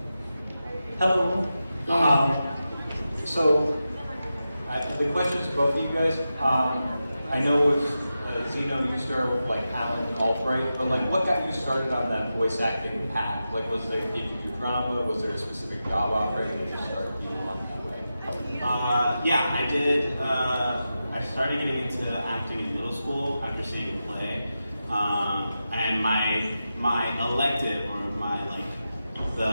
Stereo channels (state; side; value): inverted; both; correlation -0.91